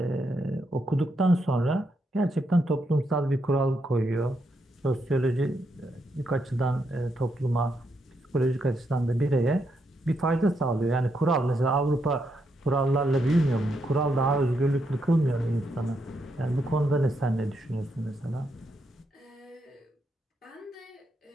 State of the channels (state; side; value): normal; both; correlation 0.80